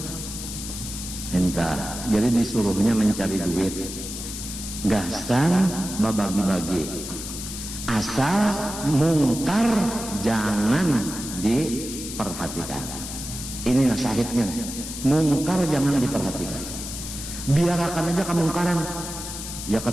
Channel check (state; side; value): noise; left; hiss, 8 dB below the sound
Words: Entah, jadi disuruhnya mencari duit, gasan babagi-bagi, asal mungkar jangan diperhatikan. Ini syahidnya, mungkar jangan diperhatikan. Biarkan aja kemungkaran, ya ke